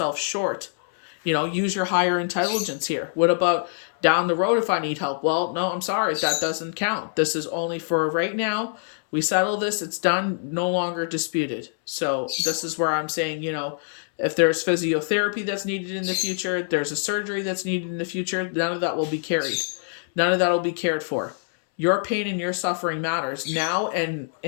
short. Use your higher intelligence here. What about down the road if I need help? Well, no, I'm sorry. That doesn't count. This is only for right now. We settle this. It's done. No longer disputed. So this is where I'm saying, if there's physiotherapy that's needed in the future, there's a surgery that's needed in the future, none of that will be carried. None of that will be cared for. Your pain and your suffering matters now and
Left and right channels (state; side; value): silent; right; 62 dB below the other